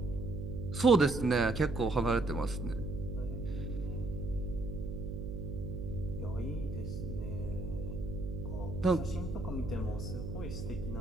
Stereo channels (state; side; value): noise; right; hum, 5 dB below the sound